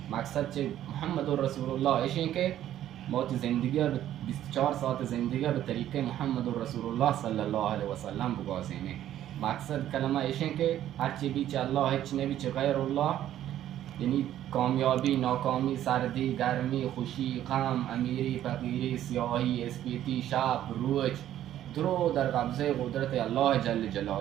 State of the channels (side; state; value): left; quieter; 12.0 dB